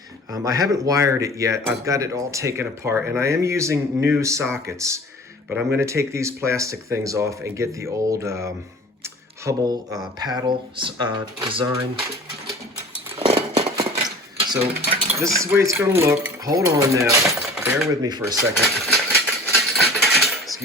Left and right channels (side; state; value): both; normal; correlation 0.43